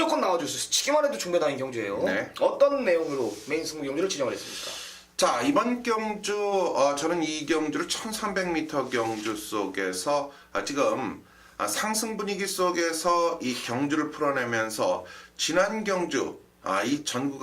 나와줄 수 있어요. 치기만 해도 중배당인 경주예요. 네. 어떤 내용으로 메인 승부 경주를 진행을 했습니까? 자, 이번 경주 저는 이 경주를 1300m 경주 속에서 지금 상승 분위기 속에서 이 경주를 풀어내면서 지난 경주 이 전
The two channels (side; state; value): both; identical; correlation 1.00